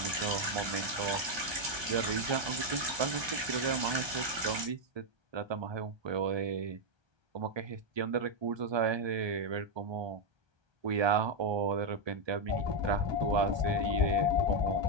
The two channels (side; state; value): left; late; 1.2 ms